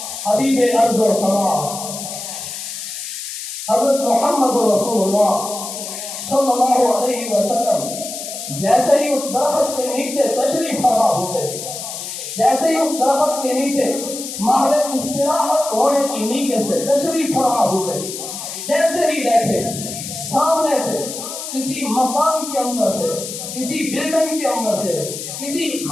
حبیب ارض و سما، حضرت محمد رسول اللہ صلی اللہ علیہ وسلم جیسے ہی اس درخت کے نیچے تشریف فرما ہوتے ہیں، جیسے ہی اس درخت کے نیچے محل استراحت ہونے کی نیت سے تشریف فرما ہوتے ہیں، جیسے ہی بیٹھے سامنے سے کسی مکان کے اندر سے، کسی بلڈنگ کے اندر سے، کسی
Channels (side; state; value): left; noise; hiss, 8 dB below the sound